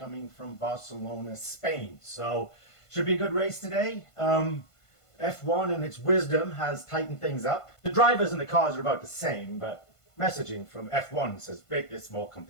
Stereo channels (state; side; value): late; right; 1.5 ms